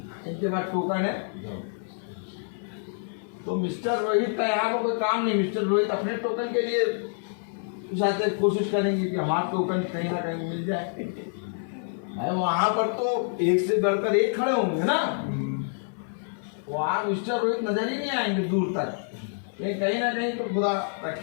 इनके पास टोकन है। तो मिस्टर रोहित का यहाँ पर कोई काम नहीं। मिस्टर रोहित अपने टोकन के लिए चाहते कोशिश करेंगे कि हमारे को कहीं ना कहीं मिल जाए। वहां पर तो एक से बढ़कर एक खड़े होंगे ना, वहां मिस्टर रोहित नजर ही नहीं आएंगे दूर तक। लेकिन कहीं ना कहीं तो खुदा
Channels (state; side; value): silent; right; 57 dB below the other